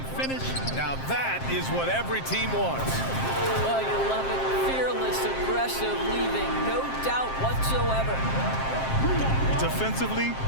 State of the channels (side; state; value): right; late; 7.6 ms